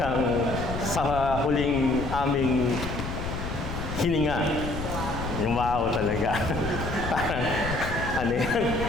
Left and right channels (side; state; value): left; noise; rumble, 6 dB below the sound